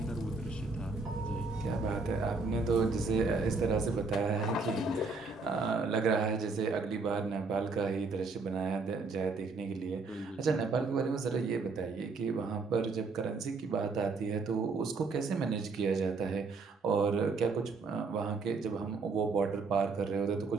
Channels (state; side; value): quieter; left; 4.1 dB